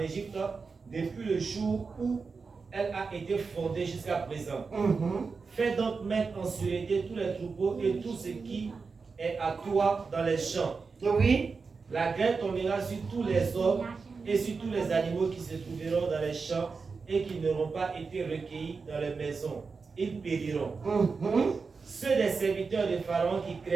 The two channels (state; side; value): quieter; left; 4.8 dB